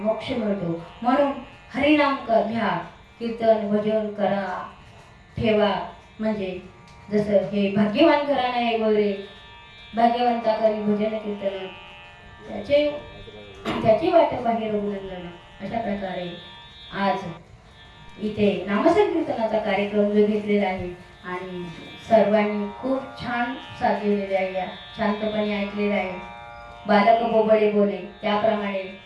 मिळतो. म्हणून हरिनाम घ्या, कीर्तन भजन करा, ठेवा. म्हणजे जसं हे भाग्यवान घराणं आहे वगैरे, भाग्यवंता करी भजन कीर्तन त्याची वाट बाहेर रघुनंदन. अशा प्रकारे आज इथे नामसंकीर्तनाचा कार्यक्रम जो घेतलेला आहे आणि सर्वांनी खूप छान साथ दिलेली आहे, शांतपणे ऐकलेलं आहे. बालक बोबडे बोले त्याप्रमाणे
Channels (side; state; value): both; identical; correlation 1.00